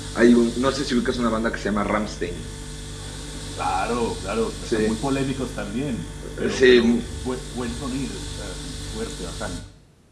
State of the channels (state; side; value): identical; both; correlation 1.00